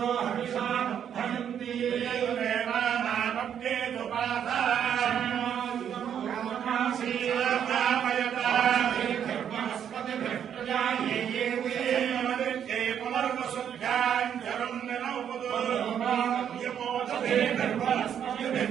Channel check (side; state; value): left; quieter; 8.9 dB